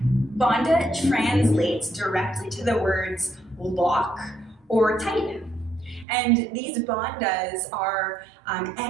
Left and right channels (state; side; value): drops out; left; at 6.1 s